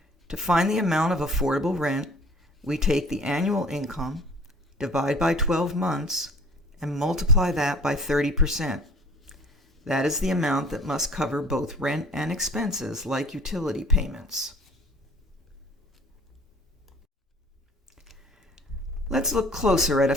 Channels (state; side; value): normal; both; correlation 0.50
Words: To find the amount of affordable rent, we take the annual income, divide by 12 months, and multiply that by 30%. That is the amount that must cover both rent and expenses like utility payments. Let's look closer at a